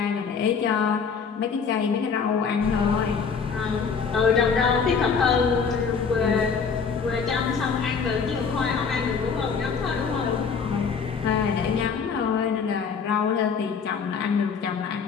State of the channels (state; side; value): quieter; right; 5.8 dB